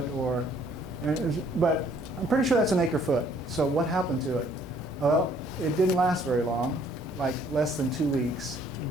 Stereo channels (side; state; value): both; normal; correlation 0.62